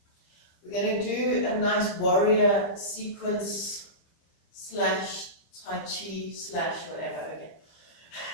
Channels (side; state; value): right; late; 25 ms